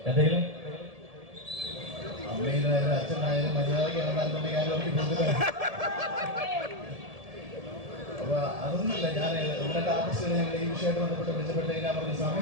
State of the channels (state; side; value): late; left; 1.7 ms